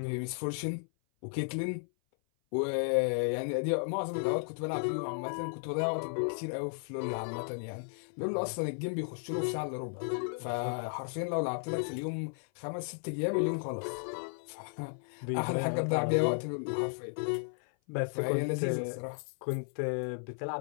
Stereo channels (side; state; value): right; silent; 55 dB below the other